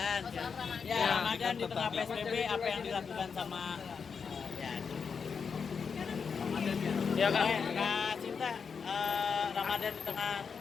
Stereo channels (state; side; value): quieter; right; 5.9 dB